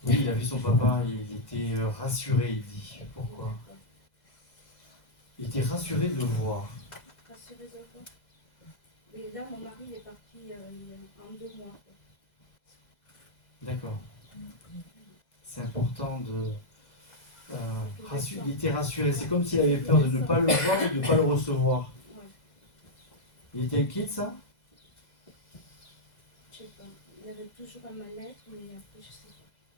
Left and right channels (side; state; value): right; late; 2.0 ms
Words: Oui, il a vu son papa, il était rassuré, il dit. Pourquoi? Il était rassuré de le voir. Rassuré de quoi? Mais là, mon mari est parti en 2 mois. D'accord. C'est important de... il était rassuré. C'est comme s'il avait peur de ne pas le voir ou de ne pas le recevoir. Ouais. Il était inquiet de ça? Je sais pas. Il avait toujours un mal-être, mais après, je sais